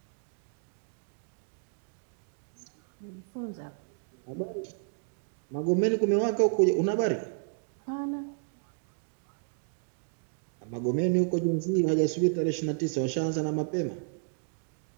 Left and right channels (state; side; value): silent; left; digital silence